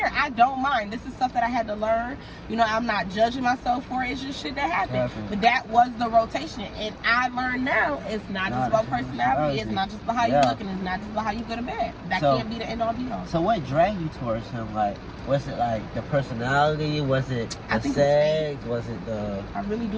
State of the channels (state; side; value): identical; both; correlation 1.00